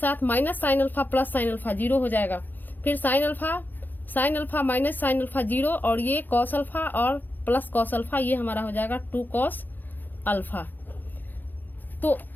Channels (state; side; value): late; right; 0.087 ms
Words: minus sine alpha plus sine alpha 0 हो जाएगा, फिर sign alpha minus sine alpha 0 और ये कॉस अल्फा और प्लस कॉस अल्फा, ये हमारा हो जाएगा 2 कॉस अल्फा। तो